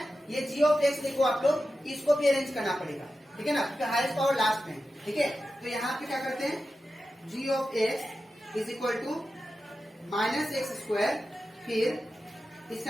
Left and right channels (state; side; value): normal; both; correlation 0.92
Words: ये जी ऑफ एक्स देखो आप लोग, इसको भी अरेंज करना पड़ेगा। ठीक है ना, क्योंकि हाईएस्ट पावर लास्ट में। ठीक है, तो यहाँ पे क्या करते हैं, g of x is equal to minus x², फिर